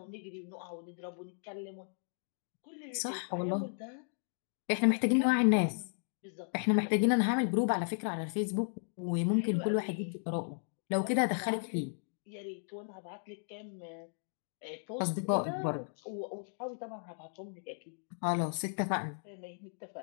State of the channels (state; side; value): silent; right; digital silence